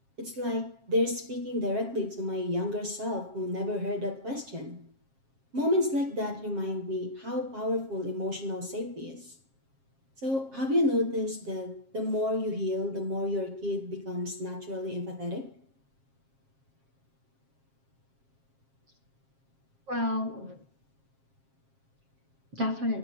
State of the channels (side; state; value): left; late; 7.5 ms